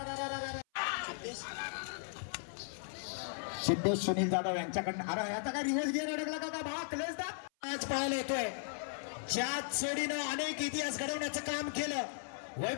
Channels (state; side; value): silent; right; 53 dB below the other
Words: सिद्धेश सुनील जाधव यांच्याकडनं अरे याचा काय रिव्हर्स गिअर अडकला का भावा क्लेस दा आज पाहायला येतोय ज्यात सोडीनं अनेक इतिहास घडवण्याचं काम केलं